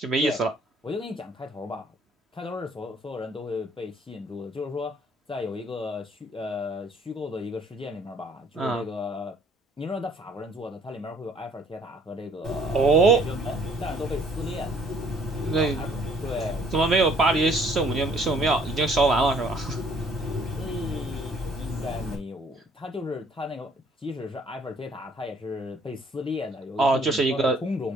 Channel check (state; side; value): normal; both; correlation 0.61